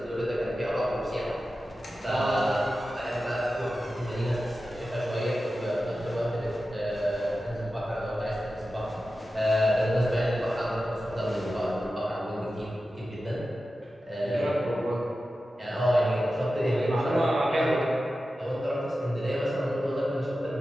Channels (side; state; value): both; normal; correlation 0.93